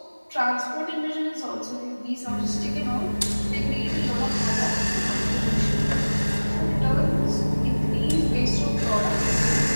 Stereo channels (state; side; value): inverted; both; correlation -1.00